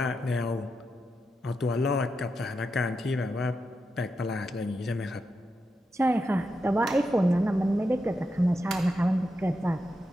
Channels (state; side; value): normal; both; correlation 0.87